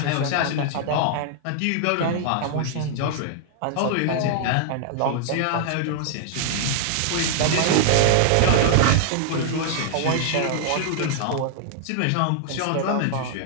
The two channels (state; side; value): different; both; correlation -0.01